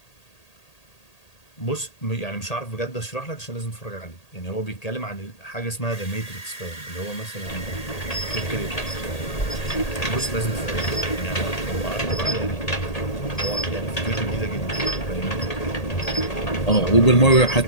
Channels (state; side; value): late; right; 1.8 ms